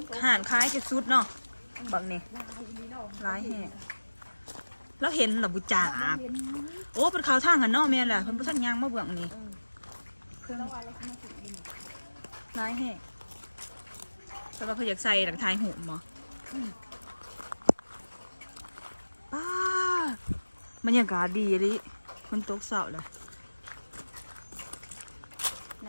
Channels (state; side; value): inverted; both; correlation -1.00